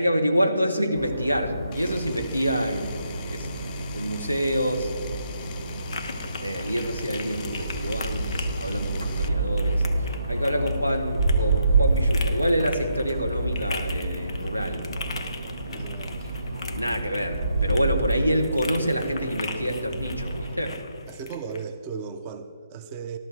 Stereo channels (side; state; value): both; inverted; correlation -0.78